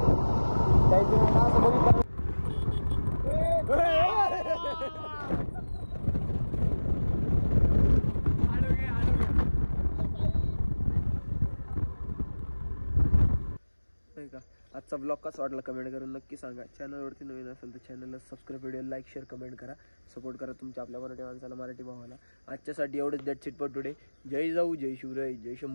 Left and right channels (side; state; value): both; inverted; correlation -1.00